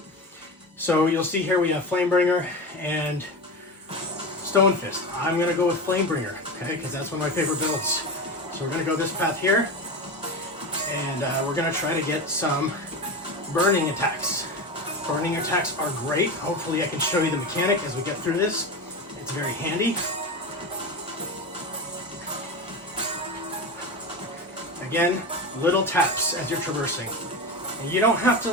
So you'll see here we have Flamebringer and Stone Fist. I'm going to go with Flamebringer, okay, because that's one of my favorite builds. So we're going to go this path here, and we're going to try to get some burning attacks. Burning attacks are great. Hopefully I can show you the mechanic as we get through this. It's very handy. Again, little taps as you're traversing. And you don't have to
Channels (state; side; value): normal; both; correlation 0.22